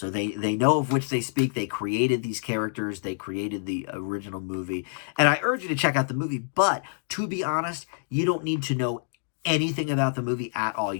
they know of which they speak. They created these characters. They created the original movie. And I urge you to check out the movie. But to be honest, you don't need to know anything about the movie at all.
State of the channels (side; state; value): right; silent; digital silence